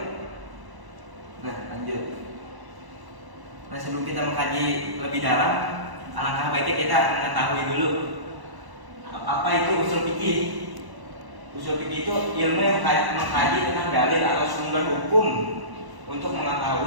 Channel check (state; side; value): late; left; 1.0 ms